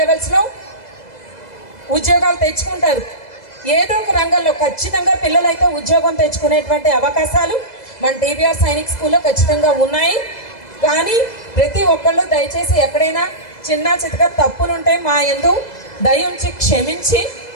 లెవెల్స్లో ఉద్యోగాలు తెచ్చుకుంటారు. ఏదో ఒక రంగంలో ఖచ్చితంగా పిల్లలైతే ఉద్యోగం తెచ్చుకునేటువంటి అవకాశాలు మన టీబీఆర్ సైనిక్ స్కూల్లో ఖచ్చితంగా ఉన్నాయి. కానీ ప్రతి ఒక్కళ్ళు దయచేసి ఎక్కడైనా చిన్న చితక తప్పులుంటే మా యందు దయ ఉంచి క్షమించి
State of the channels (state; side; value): late; right; 2.0 ms